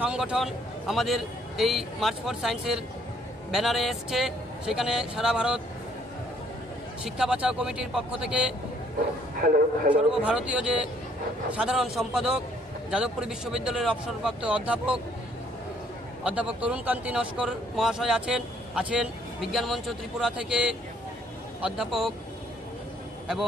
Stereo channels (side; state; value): both; normal; correlation 0.64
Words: সংগঠন আমাদের এই মার্চ ফর সায়েন্সের ব্যানারে এসছে। সেখানে সারা ভারত শিক্ষা বাঁচাও কমিটির পক্ষ থেকে সর্বভারতীয় যে সাধারণ সম্পাদক যাদবপুর বিশ্ববিদ্যালয়ের অবসরপ্রাপ্ত অধ্যাপক তরুণকান্তি নস্কর মহাশয় আছেন বিজ্ঞান মঞ্চ ত্রিপুরা থেকে অধ্যাপক